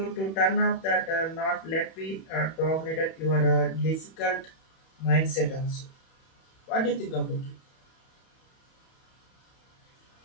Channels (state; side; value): late; right; 31 ms